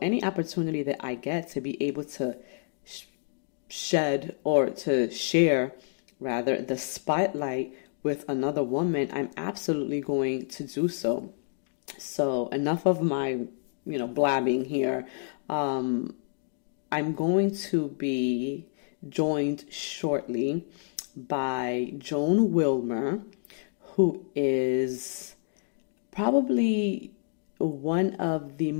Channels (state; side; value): silent; right; digital silence